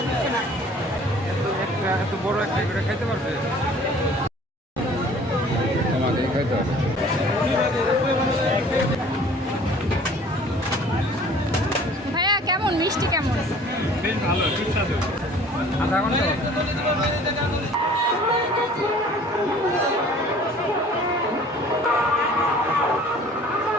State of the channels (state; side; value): normal; both; correlation 0.50